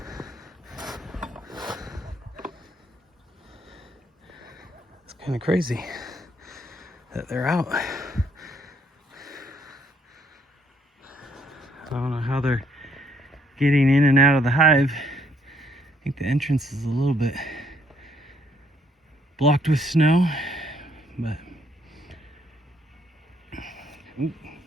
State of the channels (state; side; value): normal; both; correlation 0.68